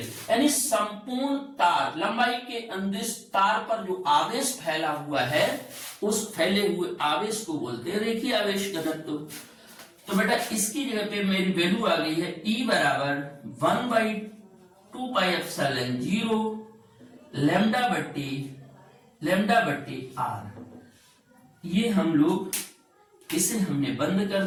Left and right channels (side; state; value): both; identical; correlation 1.00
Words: यानी संपूर्ण तार लंबाई के अंदिश तार पर जो आवेश फैला हुआ है उस फैले हुए आवेश को बोलते हैं रेखीय आवेश घनत्व। तो बेटा इसकी जगह पे मेरी वैल्यू आ गई है E बराबर 1/2πε0 लैम्डा बट्टी आर। ये हम लोग इसे हमने बंद कर